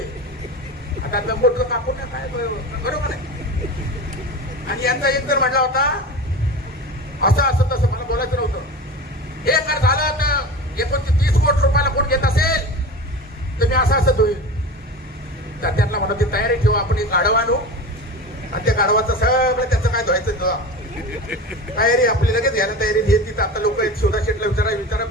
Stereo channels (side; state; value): both; normal; correlation 0.30